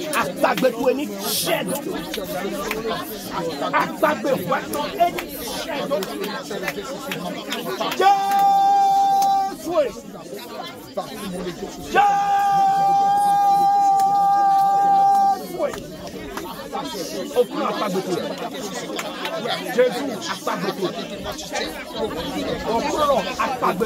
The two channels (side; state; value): both; identical; correlation 1.00